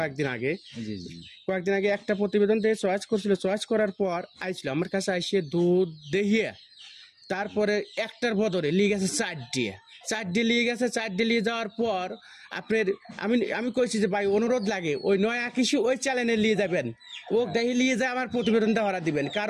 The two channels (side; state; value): both; identical; correlation 1.00